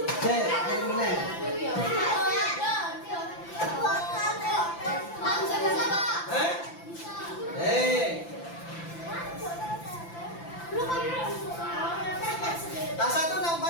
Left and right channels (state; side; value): late; right; 5.9 ms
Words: Cek, kirimnya. Tas satu